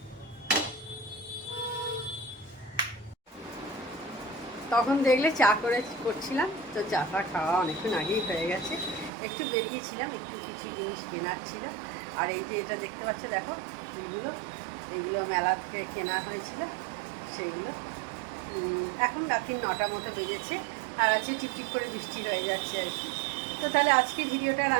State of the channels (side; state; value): left; drops out; at 9.1 s